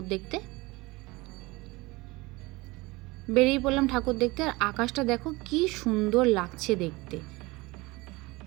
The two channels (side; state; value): left; quieter; 22.5 dB